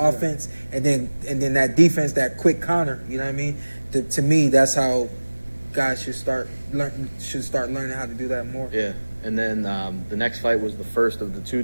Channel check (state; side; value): inverted; both; correlation -1.00